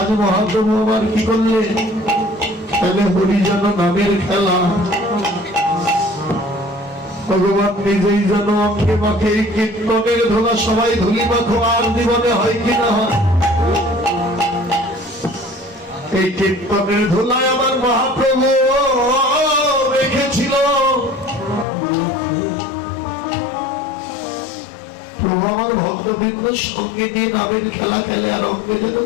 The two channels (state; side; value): drops out; right; at 21.7 s